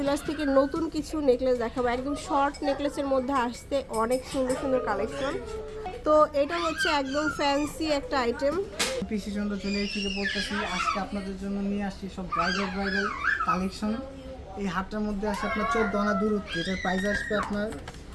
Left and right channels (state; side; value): identical; both; correlation 1.00